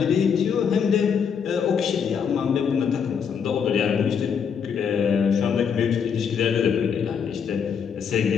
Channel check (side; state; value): right; quieter; 6.9 dB